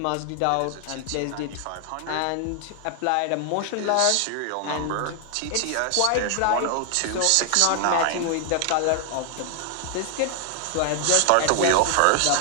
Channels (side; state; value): both; different; correlation 0.00